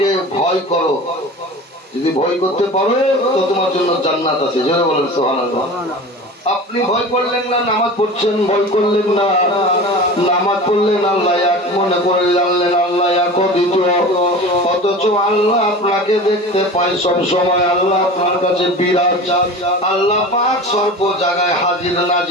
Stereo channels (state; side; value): normal; both; correlation 0.35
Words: ভয় করো, যদি ভয় করতে পারো তো তোমার জন্য জান্নাত আছে। জোরে বলেন সুবহানাল্লাহ। আপনি ভয় করলেন না, নামাজ পড়ছেন, ভয় করলেন না, নামাজ পড়লেন, আল্লাহ এক মনে করে জানলেন আল্লাহ এক দ্বিতীয়, অথচ আল্লাহ আপনাকে দেখতে পায় সব সময়, আল্লাহ আপনার কাছে বিরাজ, আল্লাহ পাক সর্ব জায়গায় হাজির